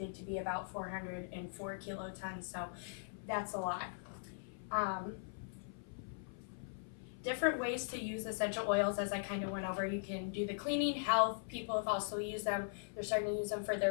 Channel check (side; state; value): right; silent; 51 dB below the other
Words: to be about 404 kilotons, so that's a lot. Different ways to use essential oils, as I kind of went over. You can do the cleaning, health. People have also used them. They're starting to use them for